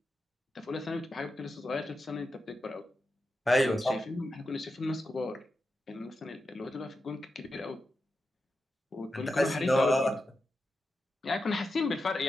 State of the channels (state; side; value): normal; both; correlation 0.89